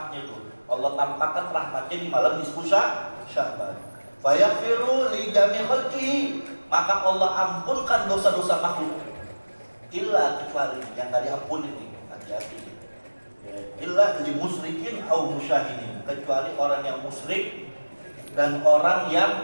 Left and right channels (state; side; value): inverted; both; correlation -1.00